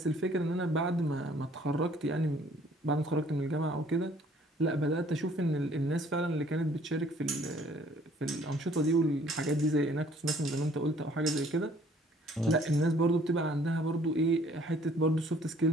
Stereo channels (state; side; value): normal; both; correlation 0.58